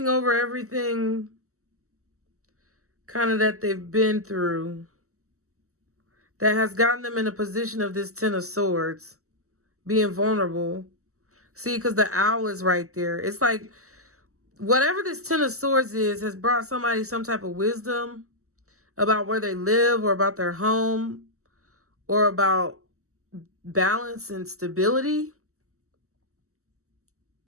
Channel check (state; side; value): late; left; 0.64 ms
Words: over everything kind of that they've been through that has gotten them in a position of this Ten of Swords, being vulnerable. See, because the owl is right there. It's like whatever this Ten of Swords is has brought somebody some type of wisdom about where they live or about their home or about balance and stability.